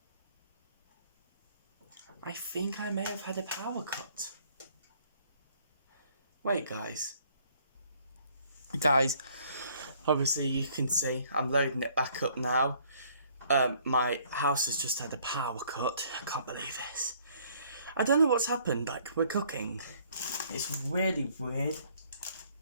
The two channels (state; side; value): inverted; both; correlation -0.61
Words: I think I may have had a power cut. Wait, guys, obviously you can see I'm loading it back up now. My house has just had a power cut. I can't believe this. I don't know what's happened, like we're cooking. It's really weird.